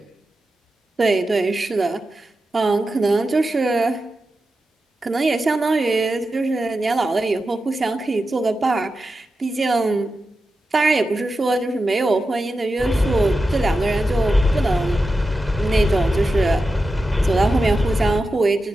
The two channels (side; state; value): both; normal; correlation 0.91